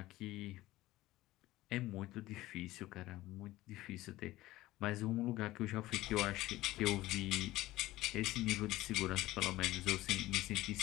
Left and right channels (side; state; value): right; quieter; 17.1 dB